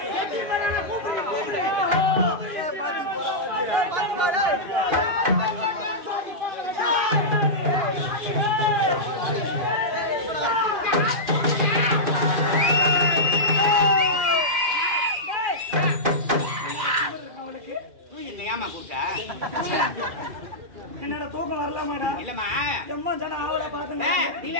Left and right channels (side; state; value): left; late; 2.4 ms